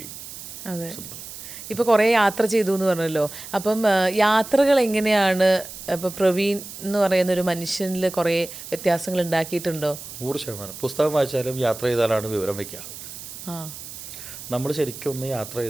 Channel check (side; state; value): right; noise; hiss, 12 dB below the sound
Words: അതെ. ഇപ്പോൾ കുറേ യാത്ര ചെയ്തു എന്ന് പറഞ്ഞല്ലോ. അപ്പം യാത്രകൾ എങ്ങനെയാണ് ഇപ്പോൾ പ്രവീൺ എന്ന് പറയുന്ന ഒരു മനുഷ്യനിൽ കുറേ വ്യത്യാസങ്ങൾ ഉണ്ടാക്കിയിട്ടുണ്ടോ? 100%. പുസ്തകം വായിച്ചാലും യാത്ര ചെയ്താലാണ് വിവരം വയ്ക്കുക. നമ്മൾ ശരിക്കും ഒന്ന് യാത്ര